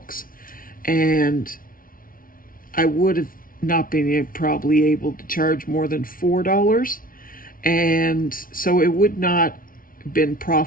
and I would have not been probably able to charge more than $4, and so it would not have been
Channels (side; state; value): right; late; 0.41 ms